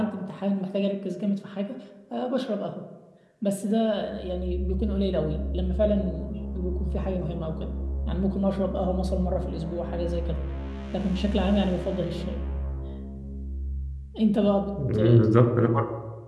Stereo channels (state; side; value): identical; both; correlation 1.00